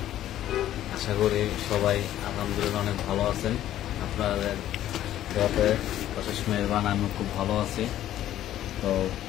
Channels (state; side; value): quieter; right; 12.5 dB